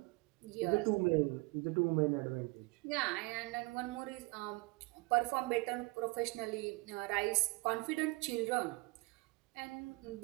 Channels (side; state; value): left; quieter; 24.5 dB